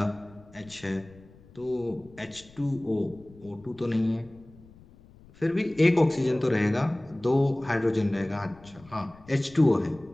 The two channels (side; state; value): left; noise; rumble, 24 dB below the sound